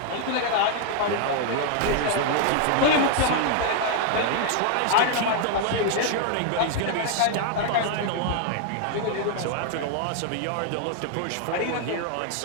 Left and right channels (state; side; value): different; both; correlation 0.00